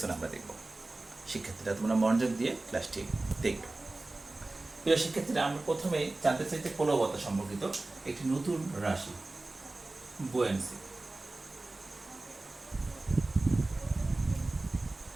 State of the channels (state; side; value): quieter; left; 3.0 dB